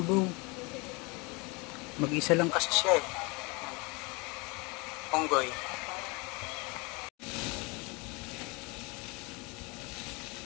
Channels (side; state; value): right; quieter; 28.2 dB